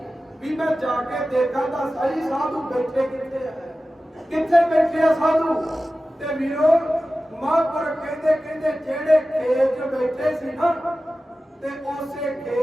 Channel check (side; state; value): both; normal; correlation 0.95